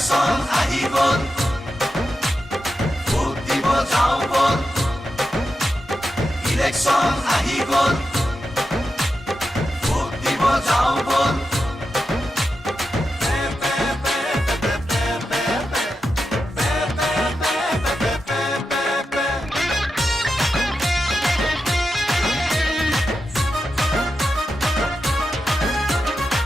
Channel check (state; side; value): normal; both; correlation 0.89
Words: আহি গ'ল ভোট দিব যাওঁ বল ইলেকশ্যন আহি গ'ল ভোট দিব যাওঁ বল